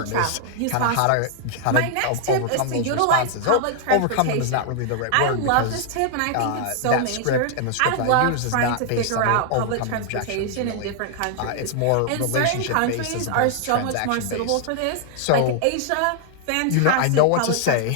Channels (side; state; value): both; different; correlation 0.00